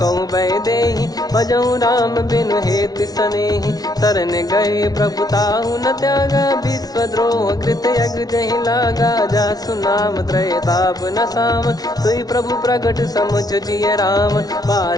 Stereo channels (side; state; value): right; late; 0.19 ms